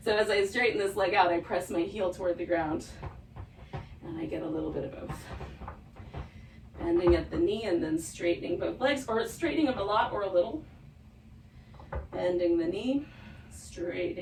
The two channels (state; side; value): identical; both; correlation 1.00